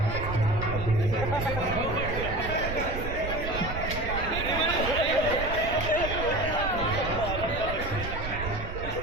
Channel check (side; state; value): right; noise; rumble, 6 dB below the sound